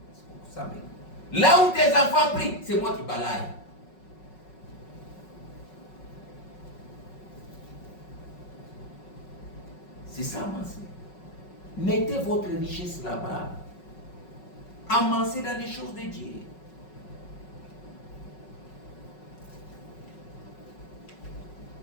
Là où tes enfants prient, c'est moi qui balaye. C'est ça, amassez. Mettez votre richesse là-bas. Amassez dans les choses de Dieu.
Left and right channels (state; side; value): late; right; 5.4 ms